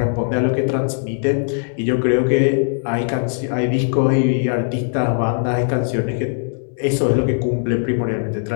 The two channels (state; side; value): silent; right; digital silence